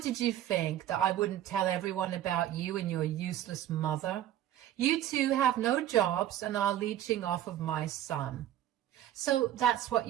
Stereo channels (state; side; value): quieter; left; 12.2 dB